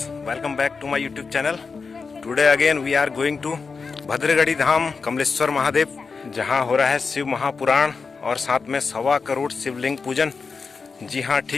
welcome back to my YouTube channel. Today again we are going to भद्रगढ़ी धाम कमलेश्वर महादेव, जहां हो रहा है शिव महापुराण और साथ में 1.25 करोड़ शिवलिंग पूजन। जी हां,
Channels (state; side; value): quieter; right; 4.9 dB